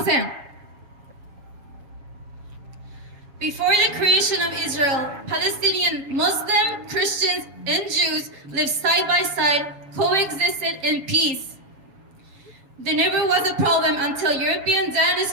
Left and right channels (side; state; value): left; late; 7.2 ms